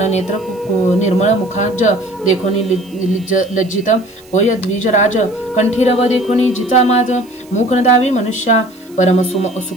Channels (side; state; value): right; noise; hiss, 27 dB below the sound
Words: नेत्र निर्मळ मुखाज. देखोनी लज्जित होय द्विजराज. कंठीरव देखोनी जिचा माज. मुख नदावी मनुष्या. परम